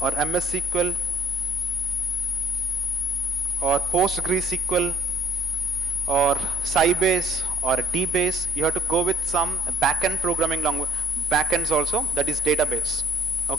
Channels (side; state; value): both; normal; correlation 0.59